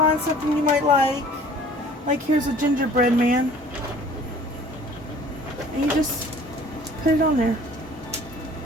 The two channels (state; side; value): normal; both; correlation 0.51